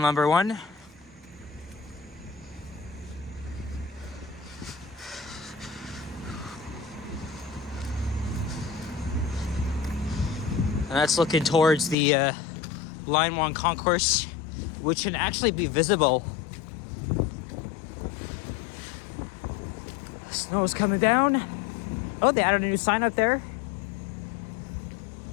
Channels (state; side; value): drops out; right; at 12.0 s